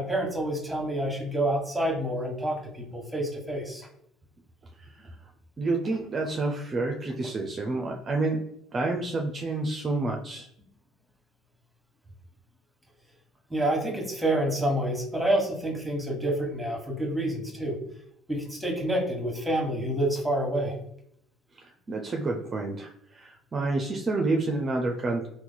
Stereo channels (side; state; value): both; normal; correlation 0.67